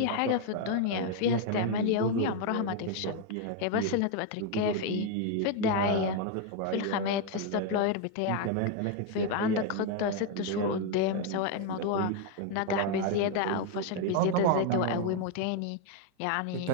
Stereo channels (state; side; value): different; both; correlation 0.01